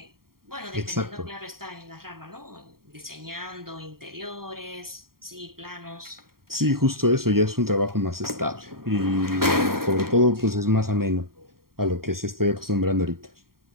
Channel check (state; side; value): late; left; 0.93 ms